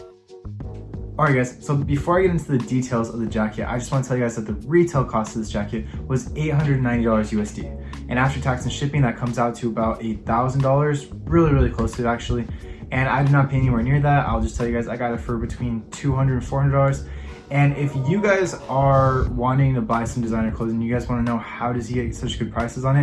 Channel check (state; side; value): identical; both; correlation 1.00